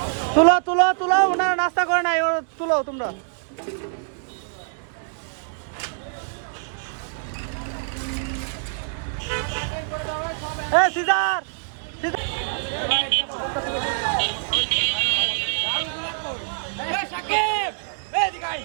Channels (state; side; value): silent; left; digital silence